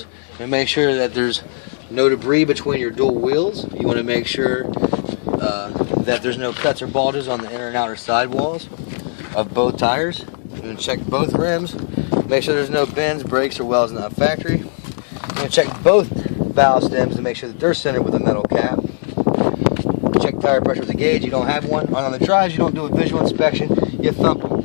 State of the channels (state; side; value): silent; right; 67 dB below the other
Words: You want to make sure that there's no debris between your dual wheels. You want to make sure that there's no cuts or bulges on the inner and outer sidewalls of both tires. You want to check both rims. Make sure there's no bends, breaks, or welds not factory. You want to check both valve stems to make sure that they're centered with a metal cap. Check tire pressure with a gauge. You don't have one. On the drives, you don't do a visual inspection. You thump